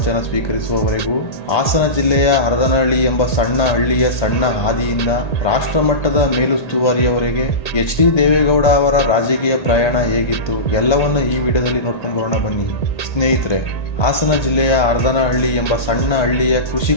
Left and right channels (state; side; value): late; right; 1.8 ms